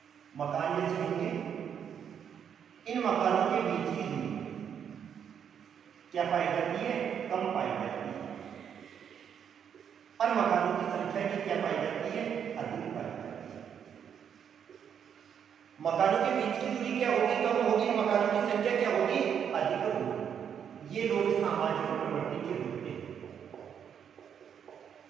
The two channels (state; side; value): quieter; left; 8.1 dB